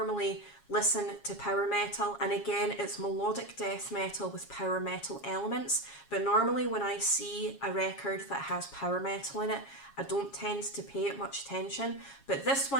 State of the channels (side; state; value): right; late; 7.3 ms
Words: listen to power metal, and again, it's melodic death metal with power metal elements, but normally when I see a record that has power metal in it, I don't tend to pay it much attention, but this